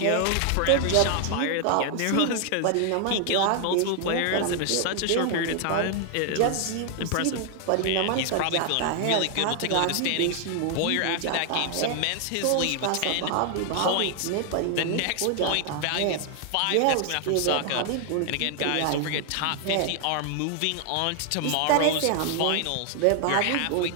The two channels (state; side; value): different; both; correlation 0.00